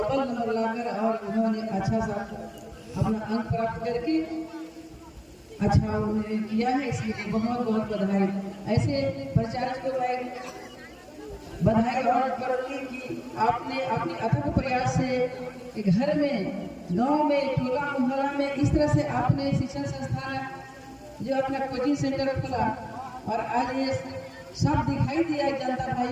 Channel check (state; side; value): identical; both; correlation 1.00